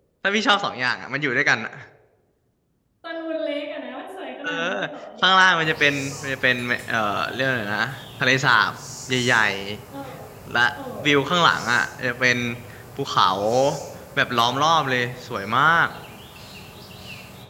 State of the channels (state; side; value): identical; both; correlation 1.00